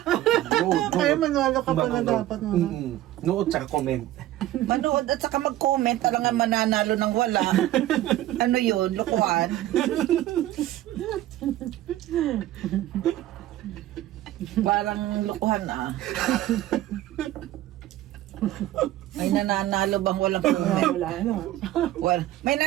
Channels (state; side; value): quieter; left; 14.5 dB